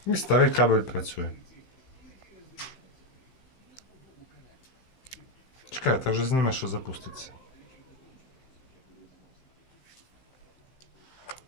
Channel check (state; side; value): late; right; 15 ms